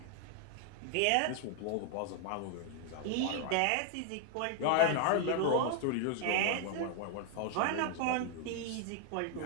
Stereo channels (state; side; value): different; both; correlation 0.00